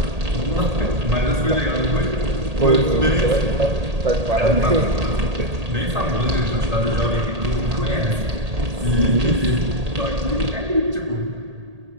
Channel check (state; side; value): late; left; 1.8 ms